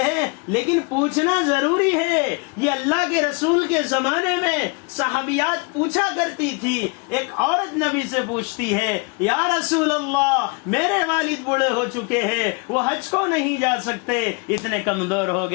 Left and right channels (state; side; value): quieter; right; 31.6 dB